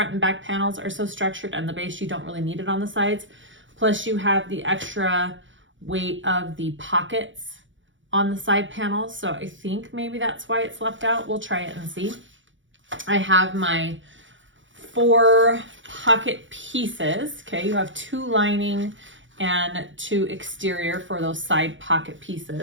and back panels are so structured and the base, you don't really need it on the sides. Plus you have the extra weight of the pockets on the side panels. So I think maybe that's why it's left out. We'll try it and see. I have my 4 pocket pieces. Okay, you have 2 lining and 2 exterior for those side pocket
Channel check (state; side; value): late; left; 0.56 ms